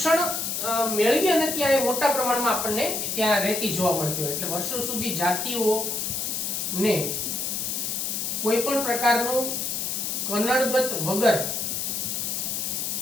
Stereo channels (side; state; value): left; noise; hiss, 1 dB below the sound